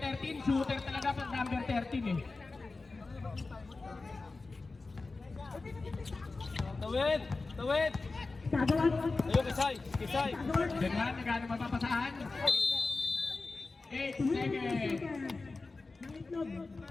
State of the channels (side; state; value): right; quieter; 3.7 dB